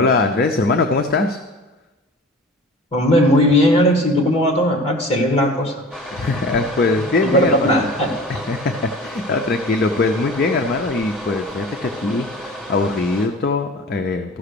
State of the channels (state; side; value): normal; both; correlation 0.40